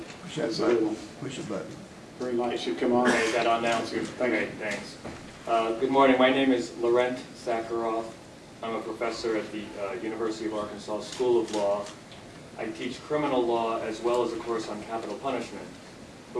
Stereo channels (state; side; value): identical; both; correlation 1.00